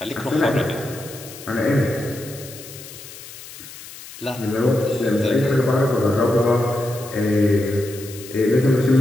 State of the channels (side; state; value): left; noise; hiss, 15 dB below the sound